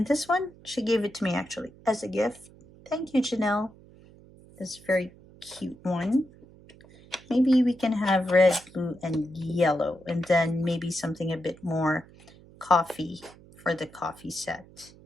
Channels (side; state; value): right; noise; hum, 23 dB below the sound